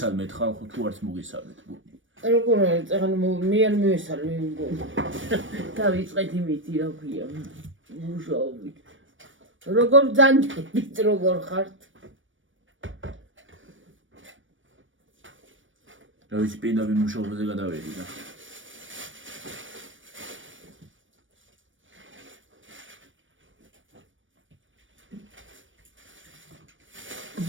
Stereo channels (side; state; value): left; late; 0.56 ms